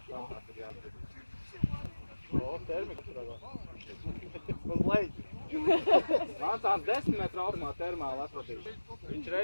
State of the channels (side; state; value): both; inverted; correlation -1.00